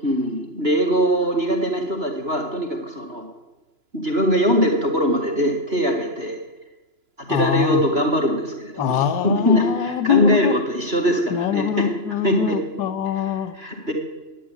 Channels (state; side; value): late; left; 2.9 ms